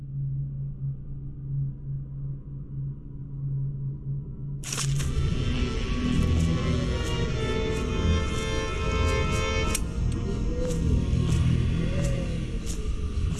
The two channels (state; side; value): identical; both; correlation 1.00